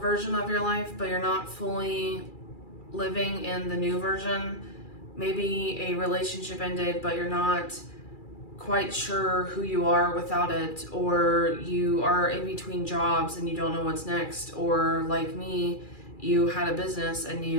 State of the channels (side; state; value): right; late; 2.4 ms